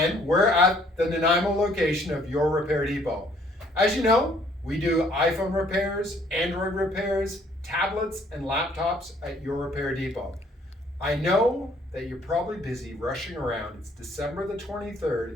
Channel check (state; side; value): normal; both; correlation 0.62